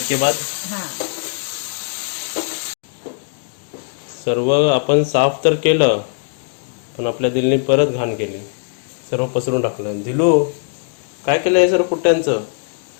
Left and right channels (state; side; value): silent; right; digital silence